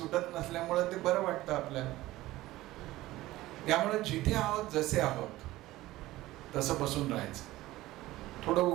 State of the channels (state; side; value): quieter; left; 17.1 dB